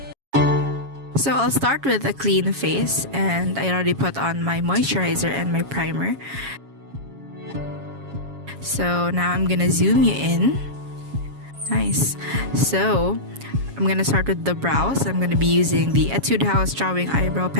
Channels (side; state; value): left; late; 7.3 ms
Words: So I'll start with a clean face, and I already put on my moisturizer and my primer. So now I'm gonna zoom you in. Nice. So I'm gonna start with the brows. I'm gonna be using the Etude House Drawing Eyebrow